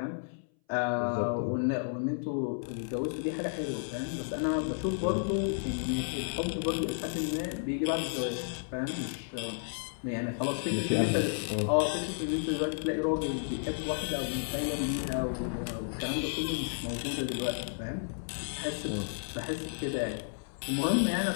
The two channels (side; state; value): right; silent; 56 dB below the other